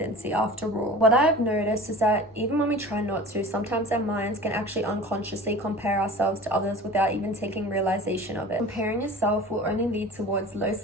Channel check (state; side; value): normal; both; correlation 0.39